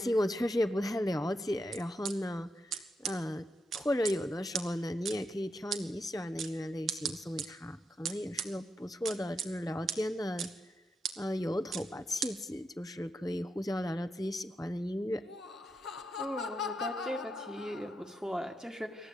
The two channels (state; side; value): normal; both; correlation 0.85